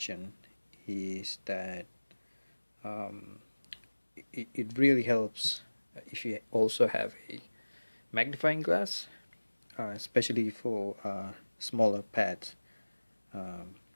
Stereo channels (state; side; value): inverted; both; correlation -1.00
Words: is that it really helps if you also have a magnifying glass, especially for smaller pads. So